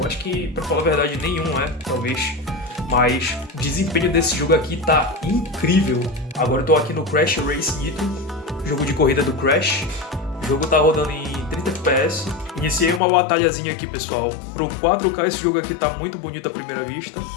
acho que, pra falar a verdade, nenhum é, talvez. Mas o desempenho desse jogo aqui tá incrível. Agora eu tô aqui no Crash Race Nitro, jogo de corrida do Crash. O jogo tá rodando em 30 FPS. Iniciei uma batalhazinha aqui, pessoal. Pro 4K esse jogo aqui tá muito bonito à primeira vista.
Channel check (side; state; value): right; drops out; at 13.0 s